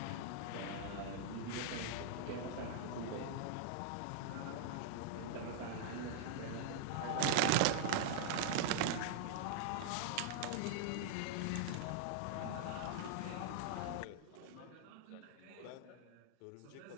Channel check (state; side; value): different; both; correlation -0.01